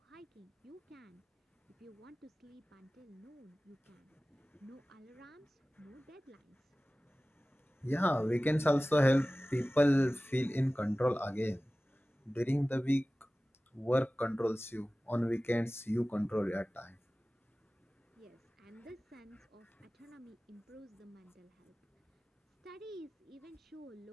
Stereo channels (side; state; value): both; normal; correlation 0.97